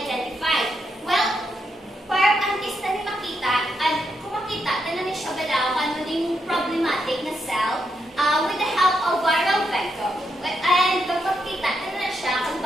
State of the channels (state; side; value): normal; both; correlation 0.81